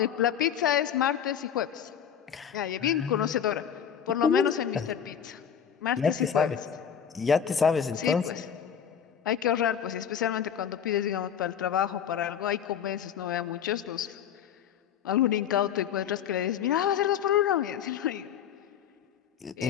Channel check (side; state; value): right; quieter; 8.4 dB